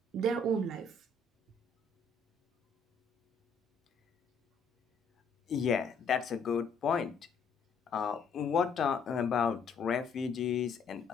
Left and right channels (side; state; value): right; quieter; 4.2 dB